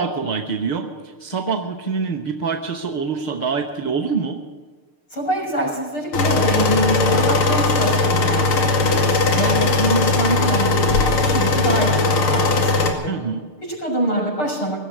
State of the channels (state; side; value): late; right; 6.6 ms